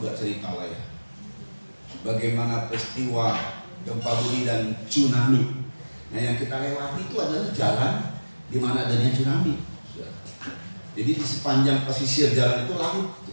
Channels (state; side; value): inverted; both; correlation -1.00